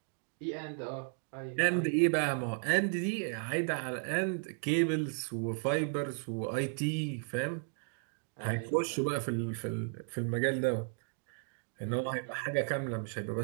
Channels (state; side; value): silent; left; 55 dB below the other